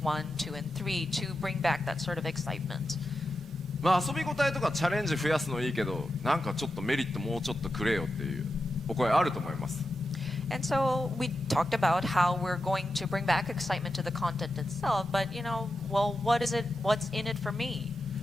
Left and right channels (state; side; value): normal; both; correlation 0.89